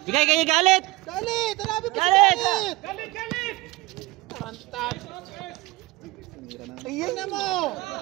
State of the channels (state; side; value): quieter; left; 20.1 dB